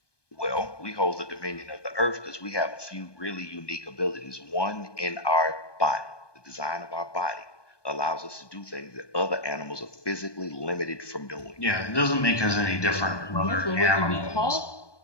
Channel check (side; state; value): right; late; 1.2 ms